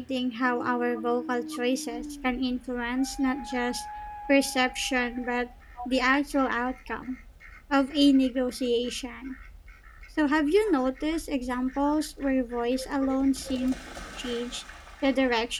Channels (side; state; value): both; identical; correlation 1.00